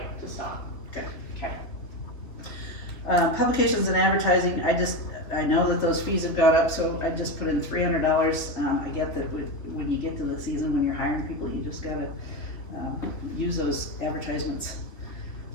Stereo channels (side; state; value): right; late; 3.4 ms